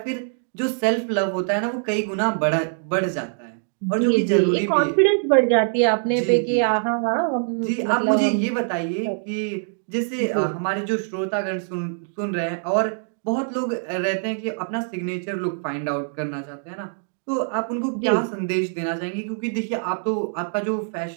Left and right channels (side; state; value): left; silent; digital silence